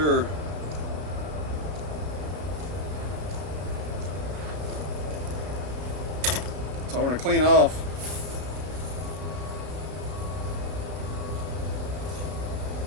So I want to clean off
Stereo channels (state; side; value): late; left; 33 ms